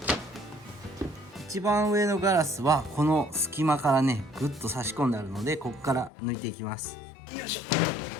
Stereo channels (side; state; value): right; drops out; at 6.1 s